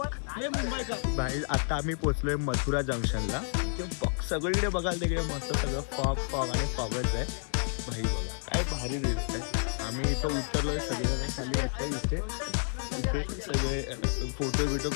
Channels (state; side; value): silent; right; 56 dB below the other